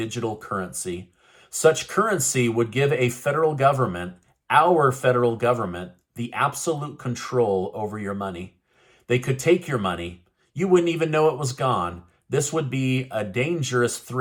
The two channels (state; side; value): identical; both; correlation 1.00